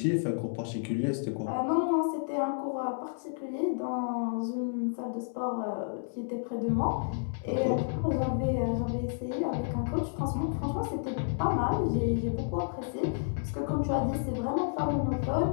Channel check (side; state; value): right; silent; 57 dB below the other